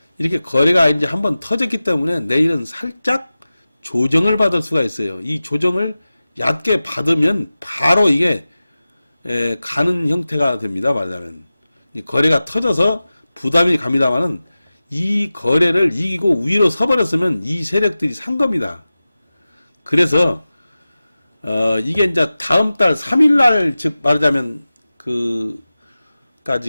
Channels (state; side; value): inverted; both; correlation -0.96